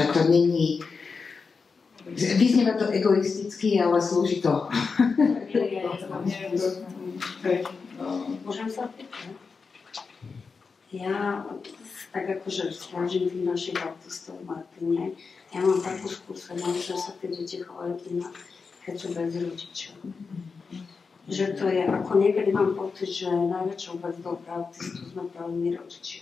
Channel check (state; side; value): quieter; right; 4.9 dB